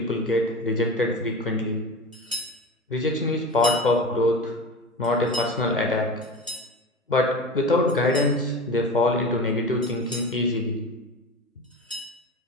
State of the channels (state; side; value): normal; both; correlation 0.30